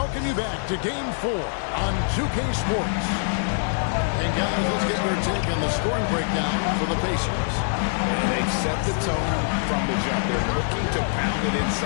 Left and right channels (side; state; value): right; silent; digital silence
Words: you back to Game 4 on 2K Sports. And guys, let's get your take on the scoring breakdown for the Pacers. And they've set the tone from the jump. They're looking to pound it